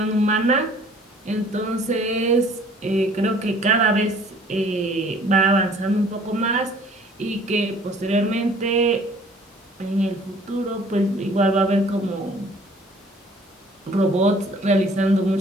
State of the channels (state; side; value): normal; both; correlation 0.54